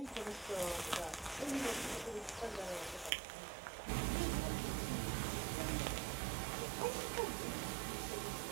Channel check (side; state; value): left; drops out; at 3.1 s